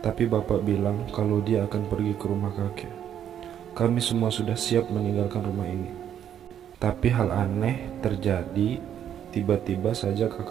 tapi bapak bilang kalau dia akan pergi ke rumah kakek. Kami semua sudah siap meninggalkan rumah ini. Tapi hal aneh terjadi. Tiba-tiba saja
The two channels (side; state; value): left; quieter; 9.7 dB